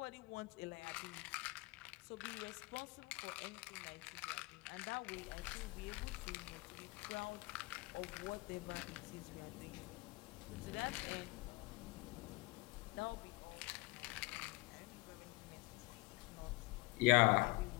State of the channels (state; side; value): quieter; right; 23.5 dB